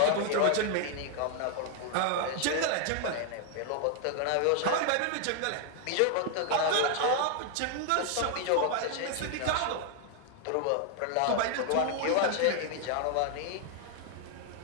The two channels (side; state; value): both; different; correlation 0.00